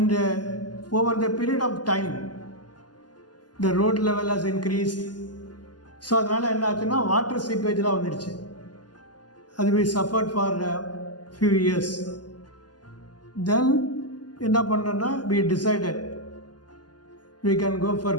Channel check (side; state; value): right; late; 0.70 ms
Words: over the period of time the road level has increased. So அதனால் என்ன ஆச்சுன்னா water சீப்பேஜ்லாம் வந்துடுச்சு. அது we suffered for a few years. Then என்ன பண்ணோன்னா we decided we can go for